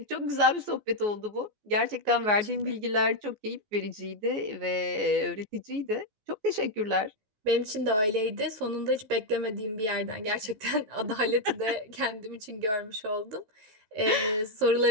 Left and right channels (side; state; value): left; late; 14 ms